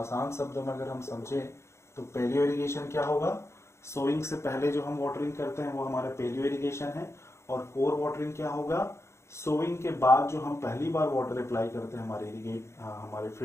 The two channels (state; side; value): late; right; 0.13 ms